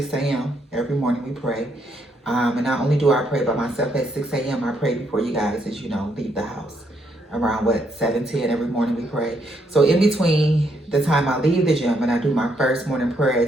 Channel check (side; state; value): both; normal; correlation 0.74